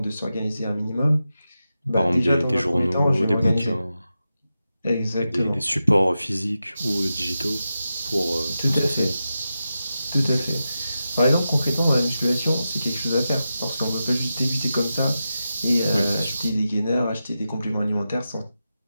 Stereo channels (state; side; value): inverted; both; correlation -0.91